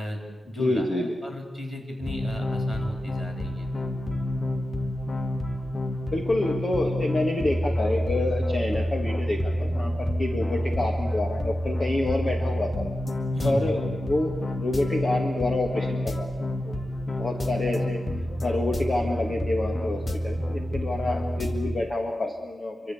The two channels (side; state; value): both; normal; correlation 0.92